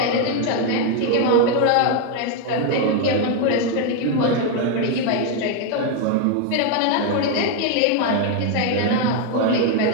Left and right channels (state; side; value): different; both; correlation 0.01